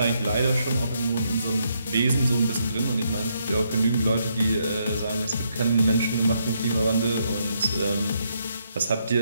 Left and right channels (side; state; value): both; inverted; correlation -0.76